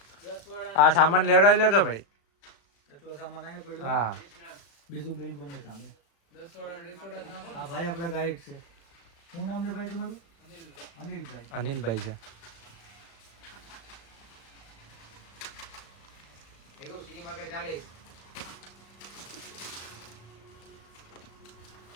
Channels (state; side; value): late; right; 36 ms